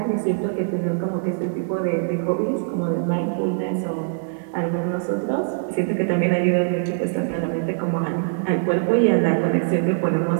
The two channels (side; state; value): left; silent; 58 dB below the other